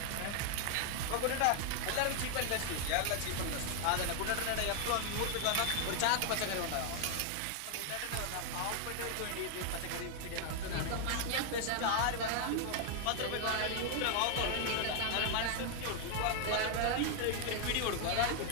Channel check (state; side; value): different; both; correlation 0.00